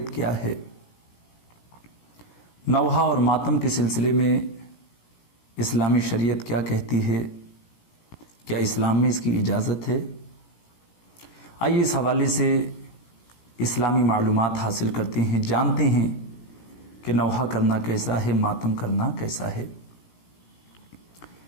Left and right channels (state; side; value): late; right; 17 ms